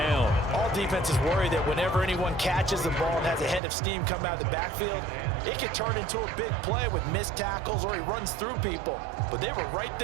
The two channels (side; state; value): left; drops out; at 3.6 s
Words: All defenses worry that whenever anyone catches the ball and has a head of steam come out of the backfield, it can turn into a big play with missed tackles or he runs through people. But they were right